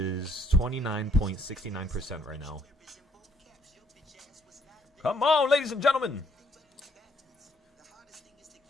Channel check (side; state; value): both; normal; correlation 0.68